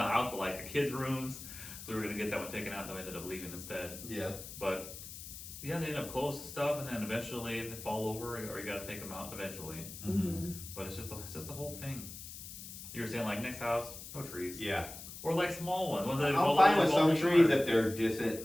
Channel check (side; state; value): left; noise; hiss, 12 dB below the sound